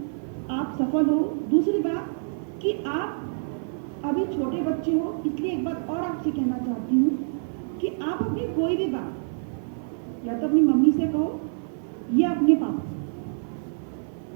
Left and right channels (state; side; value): silent; left; 56 dB below the other